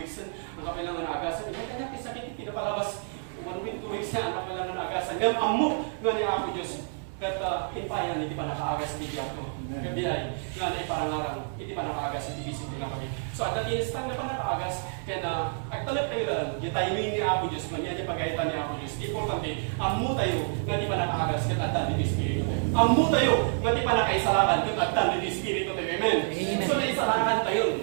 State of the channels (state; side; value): silent; left; 59 dB below the other